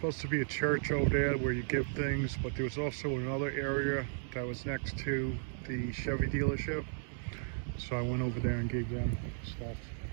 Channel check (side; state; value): left; silent; digital silence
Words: to be a church over there where you give things, but there was also another area that was next to the Chevy dealership. So I went over there and gave them stuff.